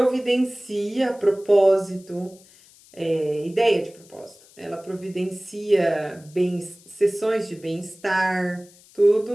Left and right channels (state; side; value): noise; left; hiss, 26 dB below the sound